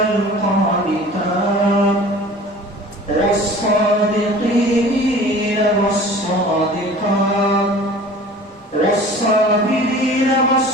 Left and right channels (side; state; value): both; normal; correlation 0.44